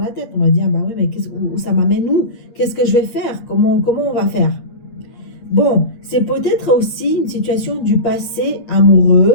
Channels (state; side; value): late; right; 8.5 ms